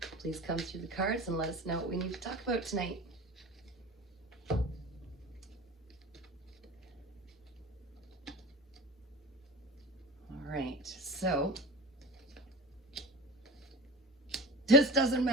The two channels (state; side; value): normal; both; correlation 0.32